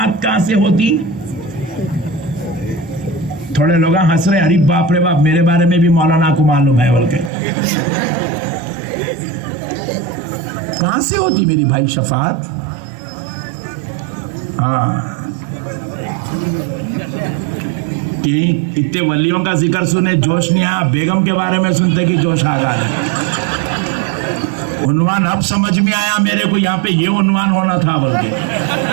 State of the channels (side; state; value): left; drops out; at 7.3 s